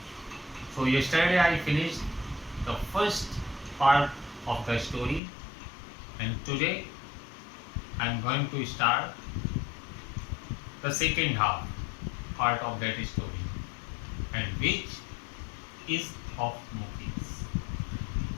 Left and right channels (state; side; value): drops out; right; at 5.2 s